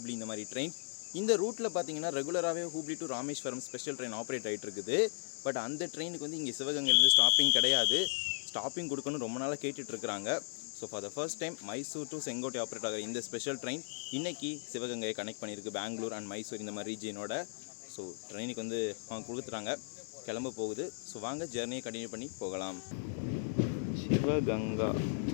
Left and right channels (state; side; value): silent; right; digital silence